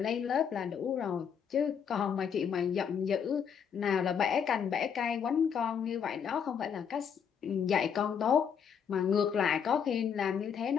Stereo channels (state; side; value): quieter; right; 7.4 dB